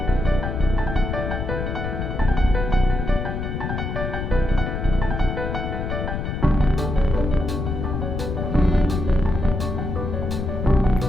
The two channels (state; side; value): noise; left; rumble, 3 dB below the sound